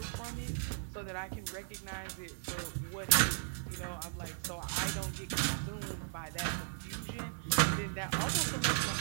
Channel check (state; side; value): silent; left; 53 dB below the other